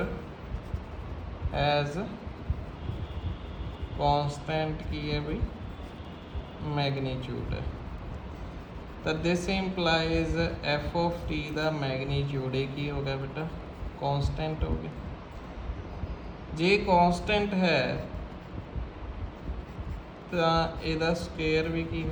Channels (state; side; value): identical; both; correlation 1.00